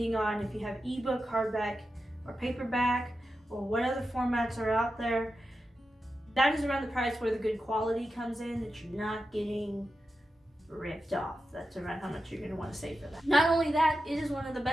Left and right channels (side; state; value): both; normal; correlation 0.90